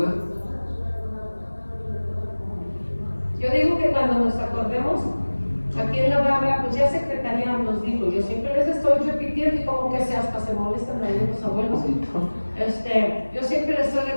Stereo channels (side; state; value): both; inverted; correlation -1.00